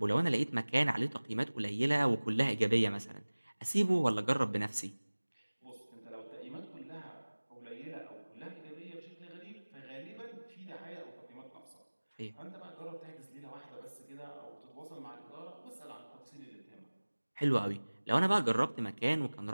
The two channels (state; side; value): inverted; both; correlation -1.00